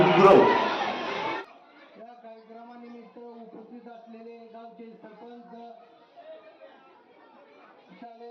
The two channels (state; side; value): identical; both; correlation 1.00